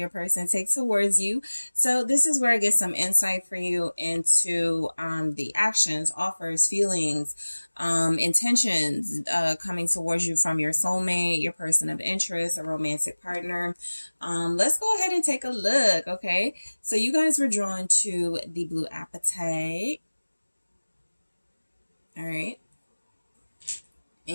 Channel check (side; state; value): both; inverted; correlation -1.00